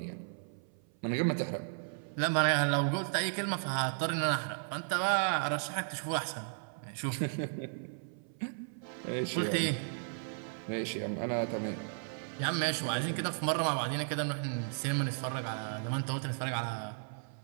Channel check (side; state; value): left; silent; 55 dB below the other